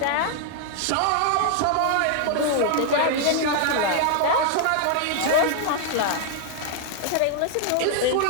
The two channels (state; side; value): different; both; correlation 0.00